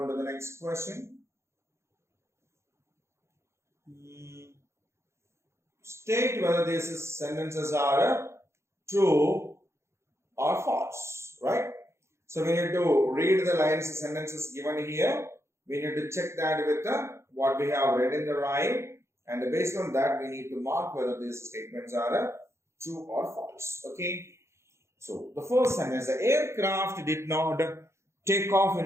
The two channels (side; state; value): left; late; 0.13 ms